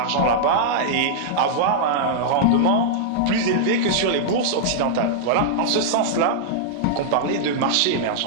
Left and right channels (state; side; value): different; both; correlation -0.01